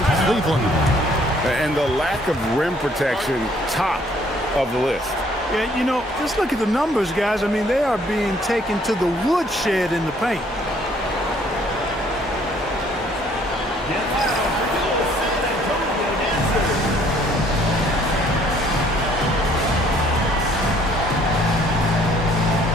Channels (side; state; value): both; normal; correlation 0.62